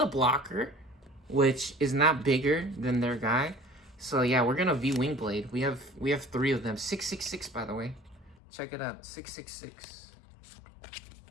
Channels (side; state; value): right; drops out; at 8.3 s